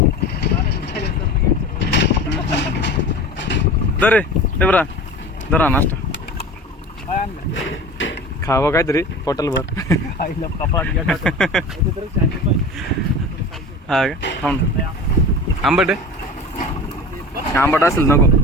दरे ते बरा धरा नाश्ता खावं काहीतरी पोटाला भर. हा का थांब. आंबट आहे आंबट असेल नको.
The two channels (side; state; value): both; normal; correlation 0.35